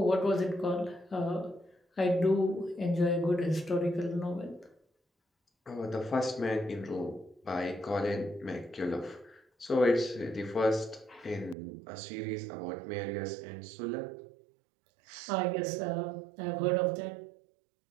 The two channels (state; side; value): drops out; left; at 11.6 s